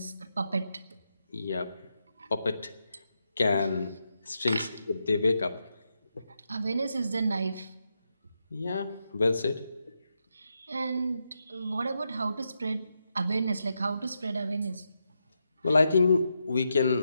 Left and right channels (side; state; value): both; inverted; correlation -0.84